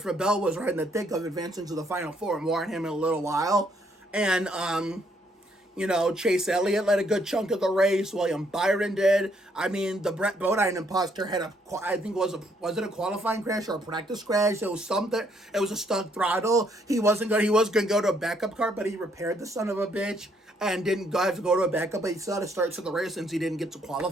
Bell was right in the thick of advancing to the Final Four. More on him in a little while. And, Chase Elliott led a good chunk of the race. William Byron did. I mean, the Brett Bodine imposter had was it a qualifying crash or a practice crash? It was something. It was a stuck throttle. He was going to go to a backup car, but he repaired the son of a bitch and didn't have to go to a backup. But he still had to start to the race since he didn't get to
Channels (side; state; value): both; normal; correlation 0.70